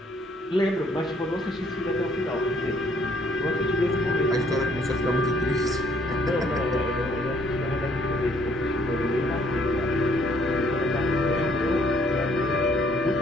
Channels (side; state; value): both; normal; correlation 0.65